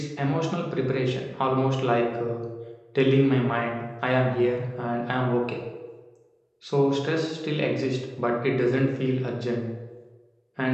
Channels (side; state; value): both; identical; correlation 1.00